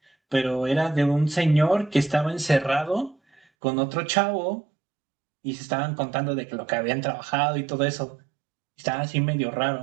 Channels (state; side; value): drops out; left; at 3.4 s